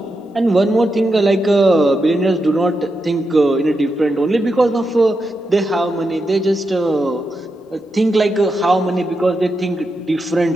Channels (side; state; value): both; normal; correlation 0.86